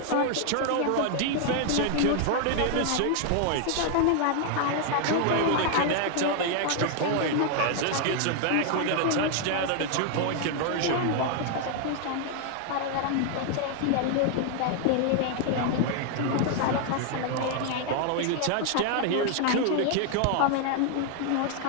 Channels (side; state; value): both; different; correlation 0.00